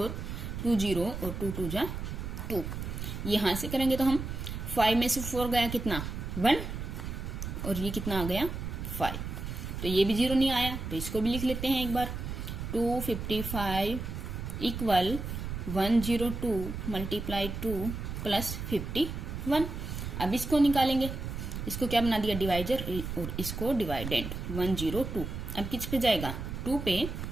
2 0 और 2 2 जा 2, यहां से करेंगे तो हम 5 में से 4 गया कितना 1 और ये कितना आ गया 5, तो ये भी 0 नहीं आया, तो इसको भी लिख लेते हैं एक बार 255 इक्वल 102 मल्टीप्लाई 2 प्लस 51। अब इसको निकालेंगे, इसको क्या बना दिया डिवाइजर और इसको डिवाइडेंड 102, अब किस पे जाएगा 2 पे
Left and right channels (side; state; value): right; noise; rumble, 6 dB below the sound